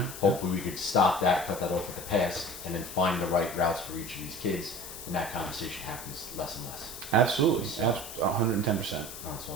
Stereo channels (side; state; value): left; noise; hiss, 11 dB below the sound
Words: hopefully we could stop that, cut that off at the pass, and then find the right routes for each of these kids, and that conversation happens less and less. Absolutely, So, 110%. That's